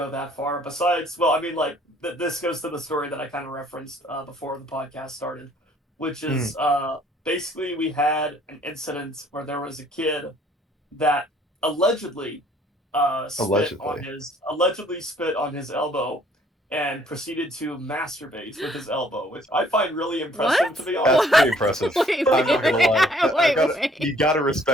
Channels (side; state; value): both; normal; correlation 0.60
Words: that far. Besides, well, I mean, like this goes to the story that I kind of referenced before the podcast started, which Mm, is basically we had an incident where there was a kid that allegedly allegedly. allegedly spit on his elbow and proceeded to masturbate with his elbow, which I find really impressive to What? be That's honest. pretty What? impressive. Wait, I'm wait, not gonna lie. I wait, gotta, wait. you gotta